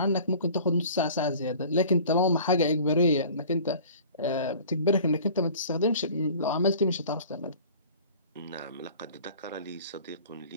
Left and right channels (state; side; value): inverted; both; correlation -0.46